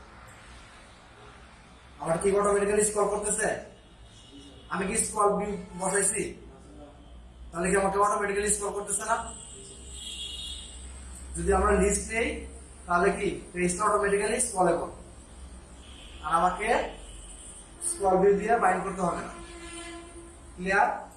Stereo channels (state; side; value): identical; both; correlation 1.00